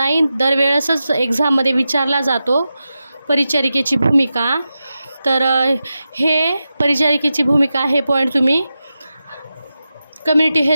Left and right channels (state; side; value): inverted; both; correlation -0.91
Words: दरवेळेसच एक्झाममध्ये विचारला जातो, परिचारिकेची भूमिका। तर हे परिचारिकेची भूमिका हे पॉईंट तुम्ही कम्युनिटी